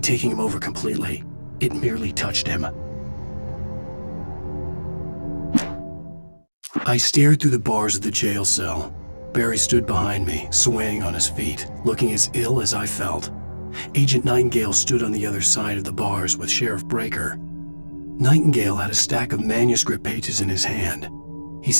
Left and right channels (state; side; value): inverted; both; correlation -1.00